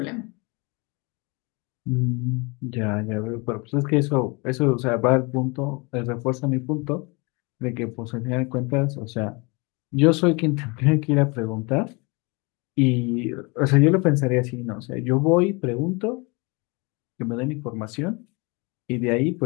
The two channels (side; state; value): right; quieter; 28.9 dB